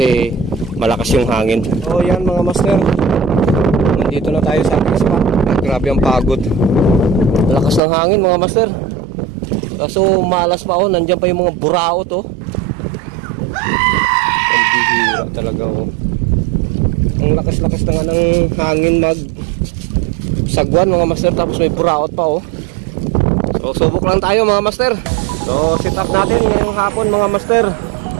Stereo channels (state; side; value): drops out; left; at 7.8 s